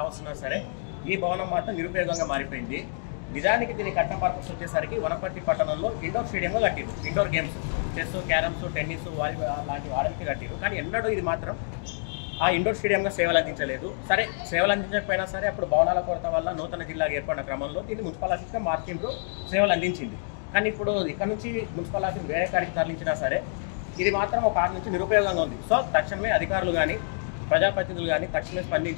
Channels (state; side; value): silent; right; digital silence